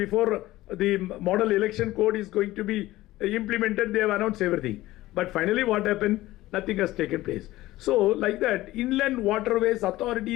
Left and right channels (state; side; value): quieter; right; 17.0 dB